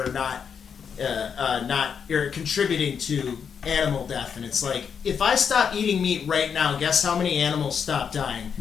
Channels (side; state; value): right; quieter; 6.9 dB